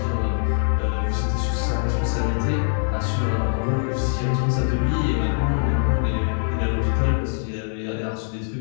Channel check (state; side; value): silent; right; digital silence